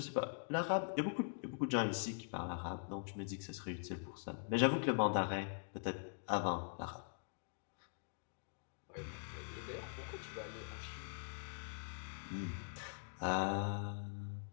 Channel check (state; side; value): silent; right; digital silence